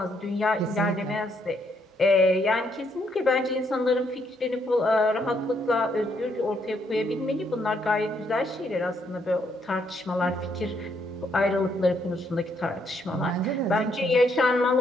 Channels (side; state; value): both; normal; correlation 0.73